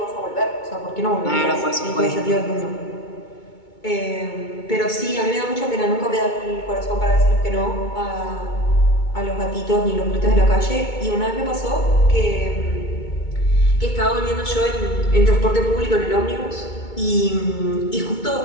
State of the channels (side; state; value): right; late; 2.2 ms